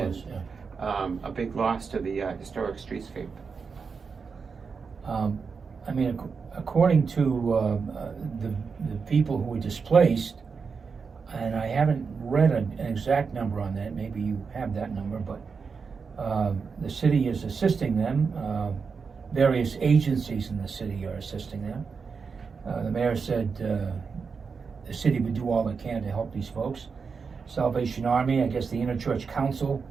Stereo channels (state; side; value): quieter; left; 5.3 dB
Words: yeah. A big loss to the historic streetscape. I mean, according to the people who were displaced, and I haven't read an exact number on that, maybe you have that number, but the city is assisting them. Various agencies in the city are assisting them. The mayor said the city would do all it can to help these folks. Salvation Army, I guess the Interchurch Council